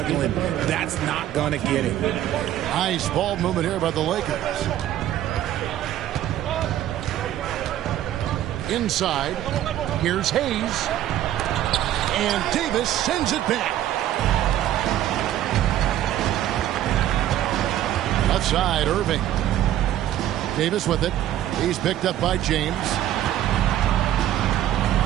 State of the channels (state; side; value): quieter; left; 12.4 dB